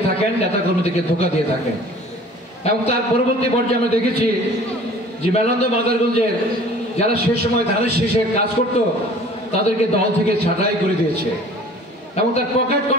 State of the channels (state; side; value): normal; both; correlation 0.48